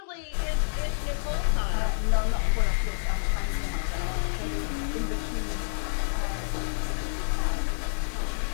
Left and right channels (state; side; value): silent; right; digital silence